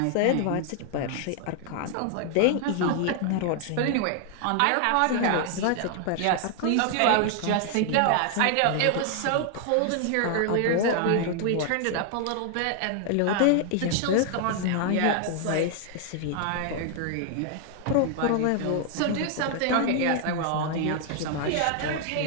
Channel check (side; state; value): both; different; correlation 0.00